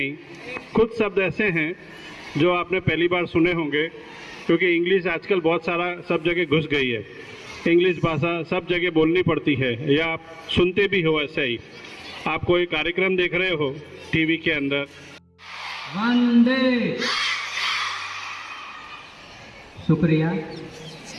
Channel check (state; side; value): identical; both; correlation 1.00